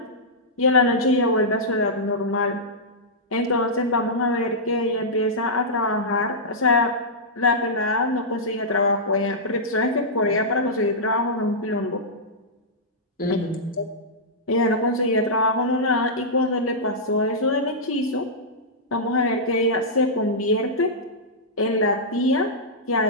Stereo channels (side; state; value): both; normal; correlation -0.12